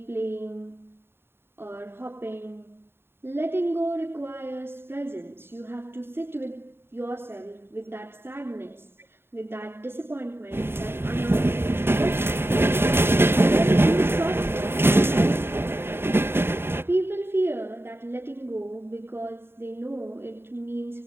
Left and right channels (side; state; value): left; late; 0.11 ms